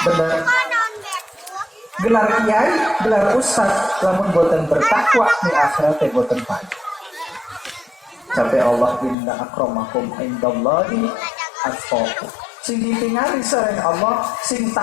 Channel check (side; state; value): right; drops out; at 9.2 s